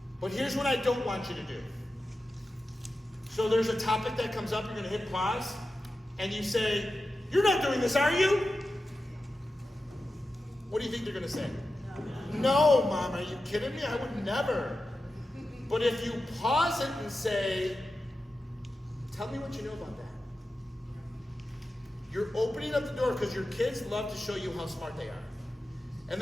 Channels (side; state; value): both; normal; correlation 0.92